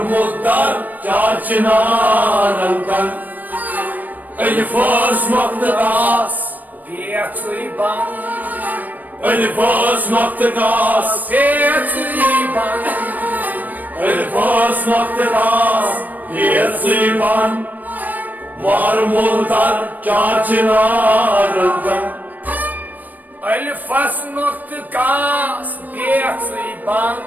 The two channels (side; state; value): left; late; 0.084 ms